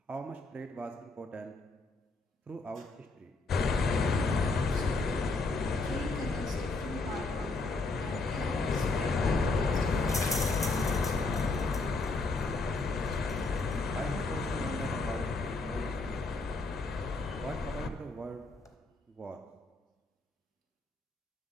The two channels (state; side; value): quieter; right; 3.5 dB